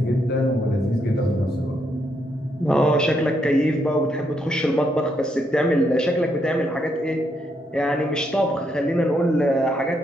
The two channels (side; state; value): both; normal; correlation 0.77